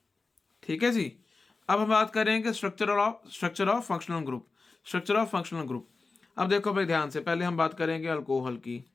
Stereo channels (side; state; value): right; quieter; 3.9 dB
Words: ठीक है जी। अब हम बात करेंगे structure of functional group. Structure of functional group, अब देखो भाई ध्यान से, पहले हम बात करेंगे अल्कोहल की।